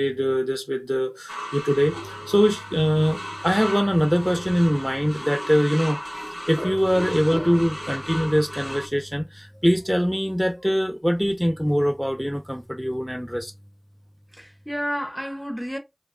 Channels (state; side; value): identical; both; correlation 1.00